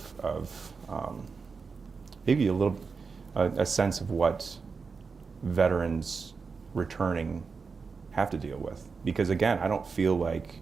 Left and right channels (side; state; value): left; quieter; 5.0 dB